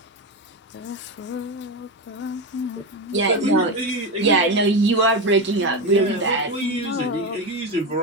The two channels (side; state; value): both; normal; correlation 0.16